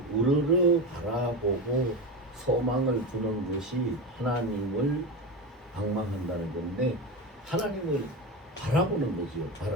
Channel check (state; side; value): normal; both; correlation 0.20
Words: 우러러 바라보고 소망을 두는 것이 하나님을 앙망한다는 건데 하나님을 바라보는 거지요.